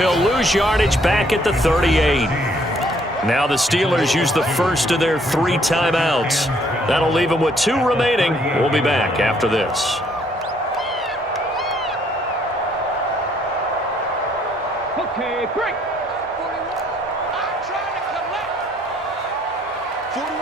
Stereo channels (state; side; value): normal; both; correlation 0.66